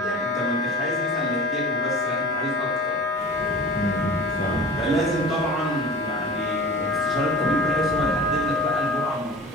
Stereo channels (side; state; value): both; normal; correlation 0.38